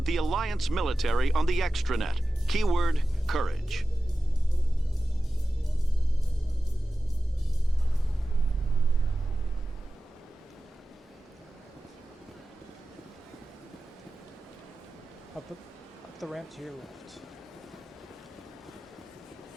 the Alliance military on the extranet. Keyword, courage. Up the ramp to your left.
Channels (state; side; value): normal; both; correlation 0.95